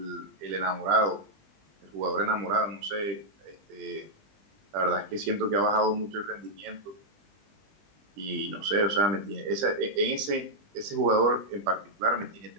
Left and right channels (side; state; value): left; late; 20 ms